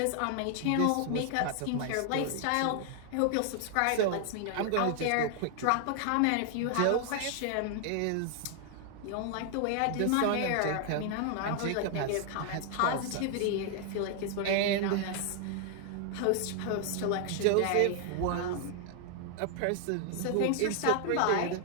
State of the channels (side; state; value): both; different; correlation 0.00